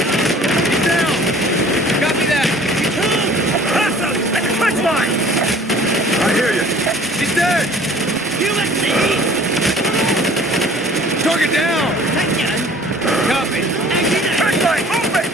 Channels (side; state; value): both; normal; correlation 0.51